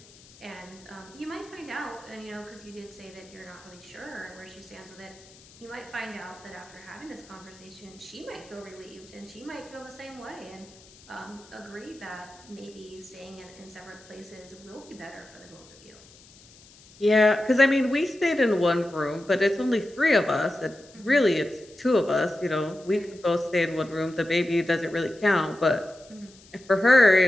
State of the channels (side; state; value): left; noise; hiss, 24 dB below the sound